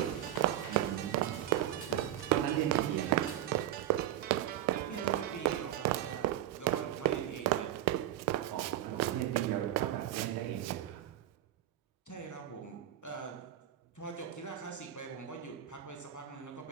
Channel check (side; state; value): left; quieter; 12.3 dB